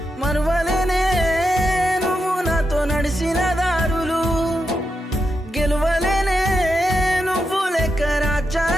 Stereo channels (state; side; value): normal; both; correlation 0.86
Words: మరువలేనే నువ్వు నాతో నడిసిన దారులు గెలువలేనే నువ్వు లేక